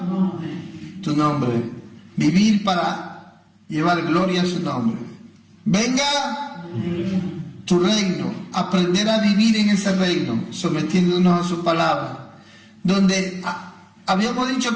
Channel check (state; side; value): identical; both; correlation 1.00